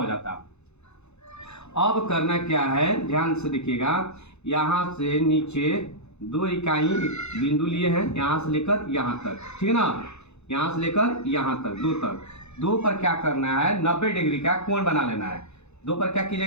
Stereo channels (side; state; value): right; late; 0.81 ms